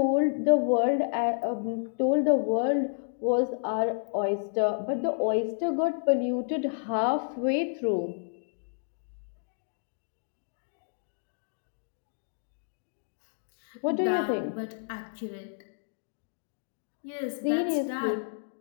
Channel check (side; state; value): right; silent; digital silence